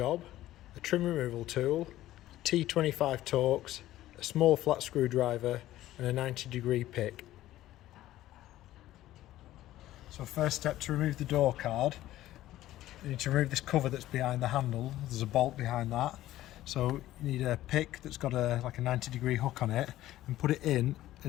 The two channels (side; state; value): right; quieter; 14.6 dB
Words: a trim removal tool, T25 Torx, a small flat screwdriver and a 90-degree pick. So first step to remove the door card, you need to remove this cover that's behind the handle. There's a bolt behind that. So you need a pick that's got like a 90-degree hook on it, and put it in